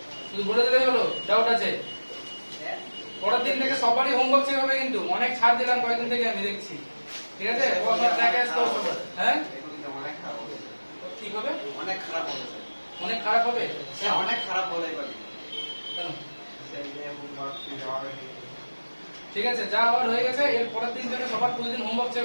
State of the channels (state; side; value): inverted; both; correlation -1.00